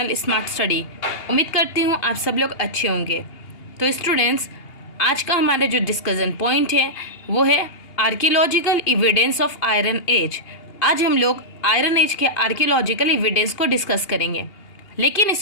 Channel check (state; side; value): late; right; 2.8 ms